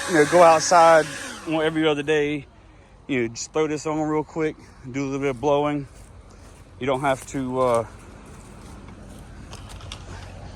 go outside every other day, just throw this on real quick, do a little bit of blowing. You don't have to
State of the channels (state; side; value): identical; both; correlation 1.00